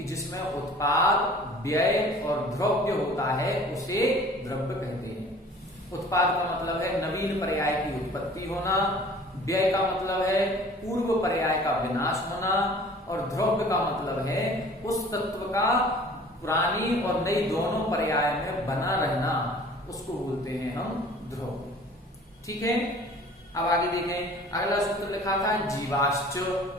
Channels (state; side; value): normal; both; correlation 0.48